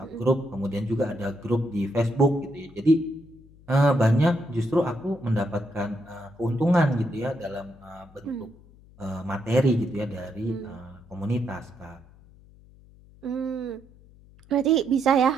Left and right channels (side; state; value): left; noise; hum, 25 dB below the sound